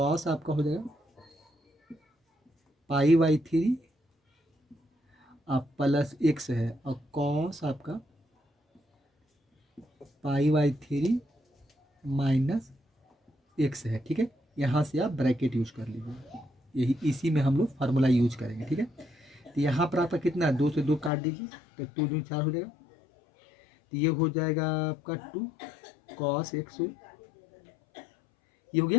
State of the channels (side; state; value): right; drops out; at 21.1 s